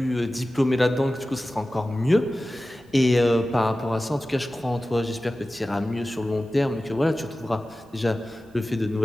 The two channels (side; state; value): both; normal; correlation 0.95